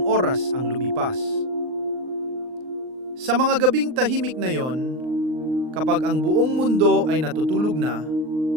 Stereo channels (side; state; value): left; late; 39 ms